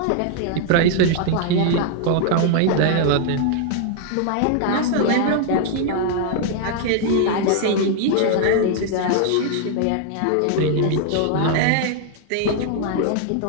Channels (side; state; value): both; different; correlation -0.01